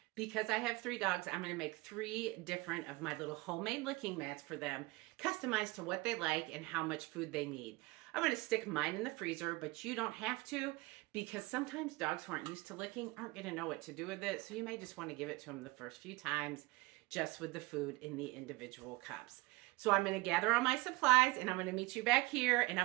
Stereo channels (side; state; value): left; quieter; 22.9 dB